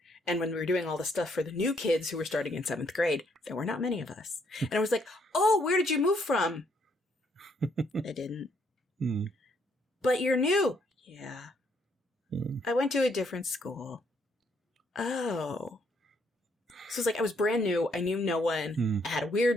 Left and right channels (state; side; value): normal; both; correlation 0.70